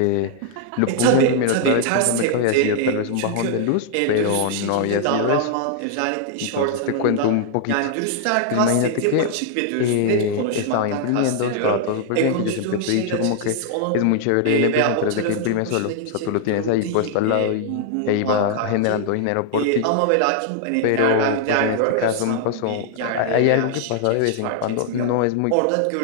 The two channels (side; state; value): both; different; correlation 0.00